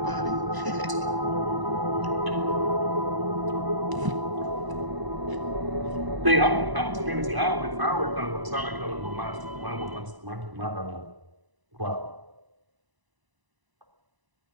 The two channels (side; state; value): left; late; 1.0 ms